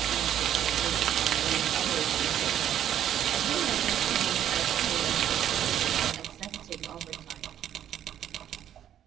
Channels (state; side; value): quieter; left; 10.6 dB